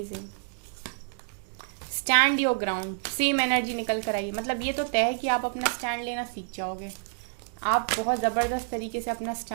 stand your ground, same energy निकल कर आई। मतलब ये तो तय है कि आप अपना स्टैंड लेना सीख जाओगे, आप बहुत जबरदस्त तरीके से अपना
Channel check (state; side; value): silent; left; digital silence